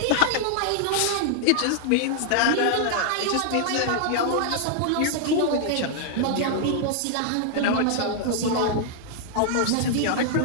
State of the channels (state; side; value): different; both; correlation -0.01